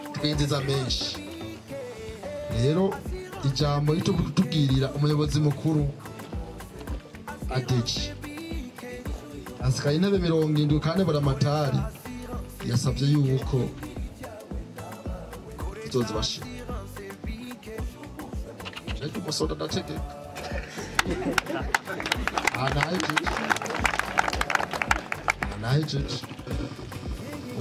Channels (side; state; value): both; identical; correlation 1.00